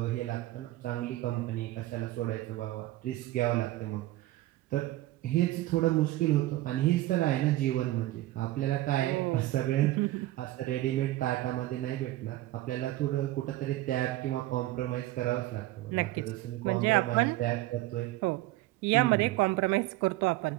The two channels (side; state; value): left; quieter; 16.6 dB